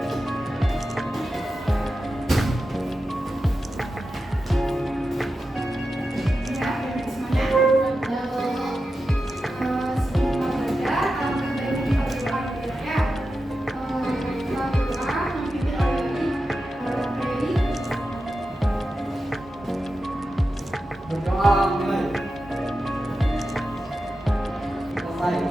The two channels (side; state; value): both; normal; correlation 0.91